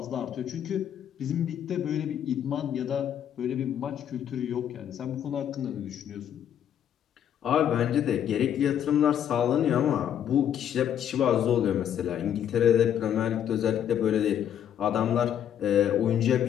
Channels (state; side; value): quieter; right; 9.7 dB